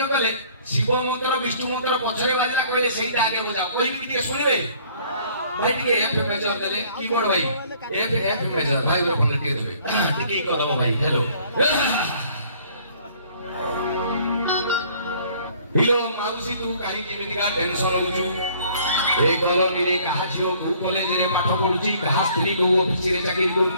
କଲେ ଶିବ ମନ୍ତ୍ର ବିଷ୍ଣୁ ମନ୍ତ୍ର ପଛରେ ବାଜିଲା କହିଲେ ସେଇଟା ଆଗେ ବଜାଅ କହିବି ଟିକେ ଶୁଣିବେ ଭାଇ ଟିକେ ଏଫ ମେଜର ଦେଲେ କିବୋର୍ଡ ଭାଇ ଏଫ ମେଜର ଭାଇ ଉପରେ ଟିକେ ଦେବେ ଟିକେ କଦମ ଭାଇ ହ୍ୟାଲୋ ହିଲୋ ମାଉସୀ ତୁ କାହିଁକି ଏମିତିକା ଟେନସନ ହଉଛୁ ଏ କଲୋନୀରେ କାହା ଝିଅ କୋଉ କଲେଜରେ ପାଠ ପଢୁଛି କାହା ସ୍ତ୍ରୀ କୋଉ ଅଫିସରେ ଚାକିରି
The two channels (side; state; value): both; inverted; correlation -0.57